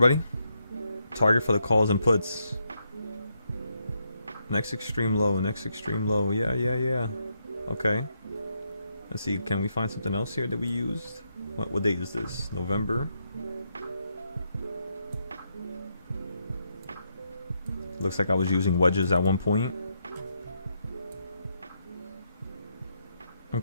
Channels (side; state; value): both; inverted; correlation -0.80